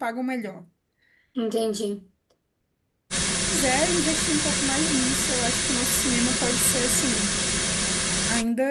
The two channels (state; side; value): identical; both; correlation 1.00